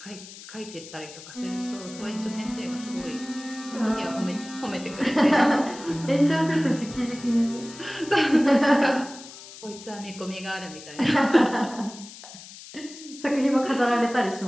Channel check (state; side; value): noise; left; hiss, 16 dB below the sound